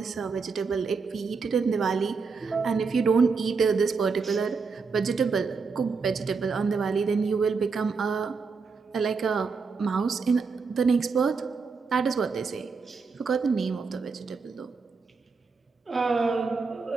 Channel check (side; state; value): left; quieter; 4.9 dB